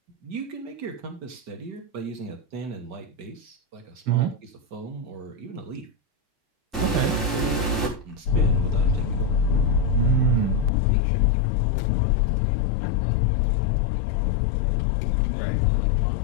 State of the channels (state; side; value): drops out; right; at 10.7 s